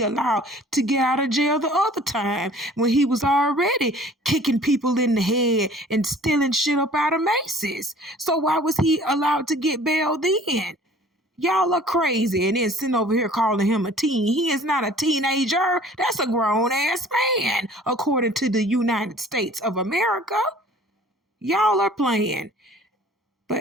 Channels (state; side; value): normal; both; correlation 0.50